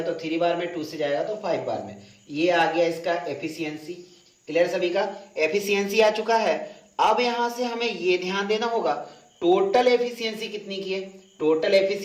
तो 3 बार में, 2 से जाएगा तो 5 बार में। ये आ गया इसका एफिशिएंसी। क्लियर सभी का, एफिशिएंसी आ चुका है। अब यहां से हमें ये ध्यान देना होगा टोटल एफिशिएंसी कितनी की है, टोटल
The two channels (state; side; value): identical; both; correlation 1.00